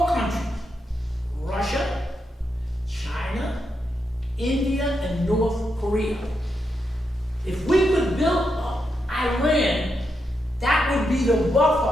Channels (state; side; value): normal; both; correlation 0.84